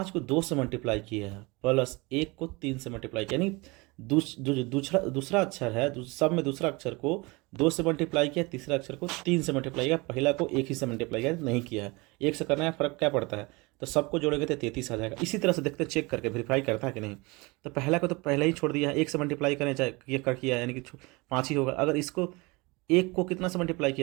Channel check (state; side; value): quieter; left; 25.4 dB